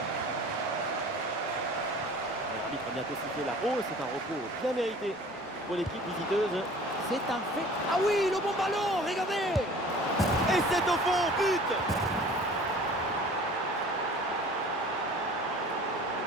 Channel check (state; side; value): normal; both; correlation 0.46